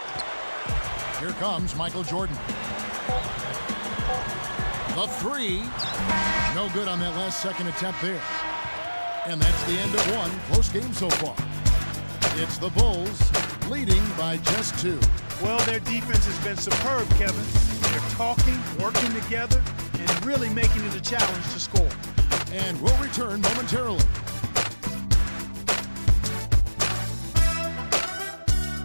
Here comes Michael Jordan. The three. No good on that last second attempt there. And that's the end of one. Close game so far. It's the Bulls leading by just 2. Well, their defense has been superb, Kevin. They're talking, working together, and really making it a challenge to score. And we'll return momentarily.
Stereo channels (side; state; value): both; inverted; correlation -1.00